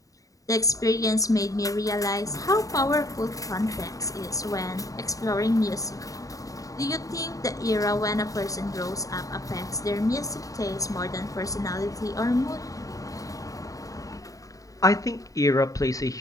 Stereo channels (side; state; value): right; late; 0.16 ms